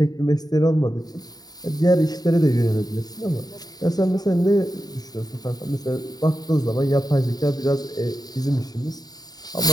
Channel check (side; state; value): right; late; 0.19 ms